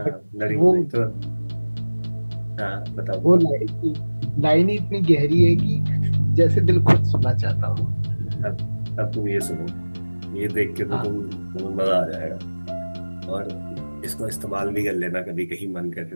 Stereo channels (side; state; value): both; inverted; correlation -1.00